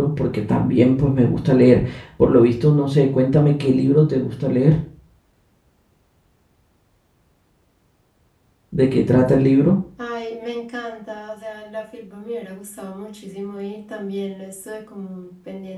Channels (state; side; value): identical; both; correlation 1.00